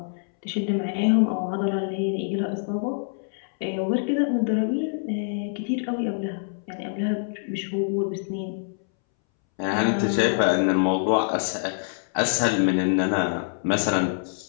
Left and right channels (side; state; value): right; silent; 62 dB below the other